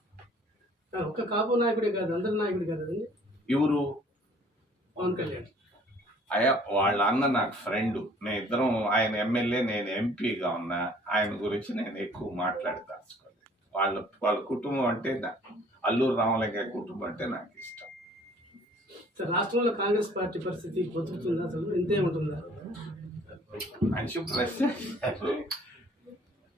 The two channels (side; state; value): both; normal; correlation 0.55